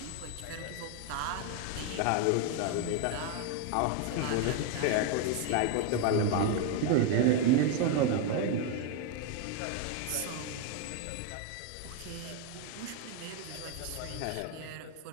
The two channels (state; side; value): different; both; correlation 0.01